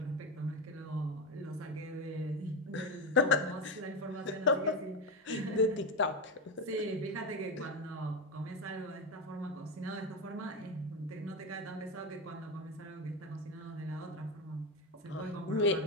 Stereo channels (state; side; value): normal; both; correlation 0.14